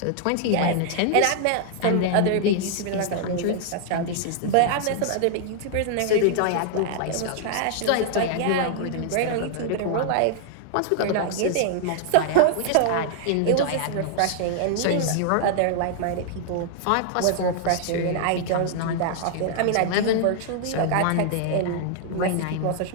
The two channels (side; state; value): both; different; correlation -0.01